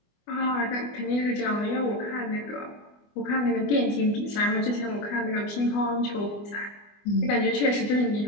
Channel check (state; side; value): late; right; 24 ms